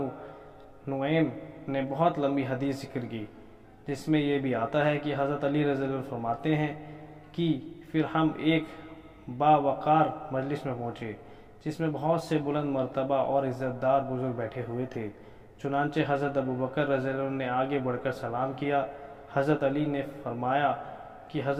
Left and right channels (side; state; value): both; identical; correlation 1.00